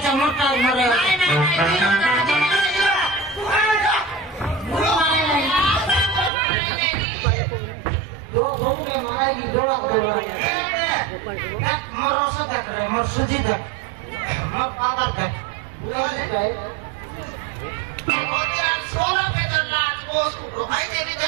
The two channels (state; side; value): drops out; left; at 6.3 s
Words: motor marai do bhunge marai ki doak doak dak morosa dak re mor suji dak mor padar dak